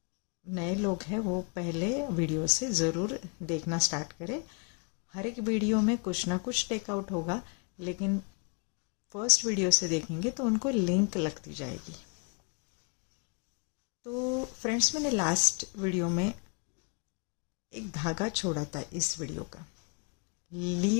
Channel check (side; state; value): right; quieter; 36.0 dB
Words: नए लोग हैं वो पहले वीडियो से ज़रूर देखना स्टार्ट करें। हर एक वीडियो में कुछ ना कुछ टेकआउट होगा, लेकिन फर्स्ट वीडियो से देखेंगे तो उनको लिंक लगती जाएगी। तो फ्रेंड्स, मैंने लास्ट वीडियो में एक धागा छोड़ा था इस वीडियो का,